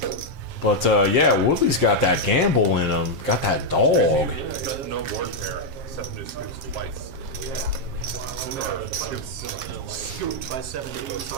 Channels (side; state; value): left; late; 7.4 ms